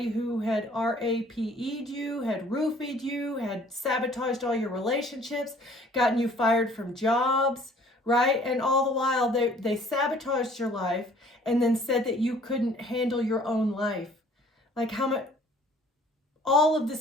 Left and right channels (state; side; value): normal; both; correlation 0.55